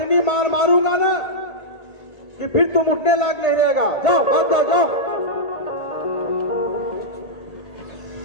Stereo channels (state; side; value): late; right; 1.5 ms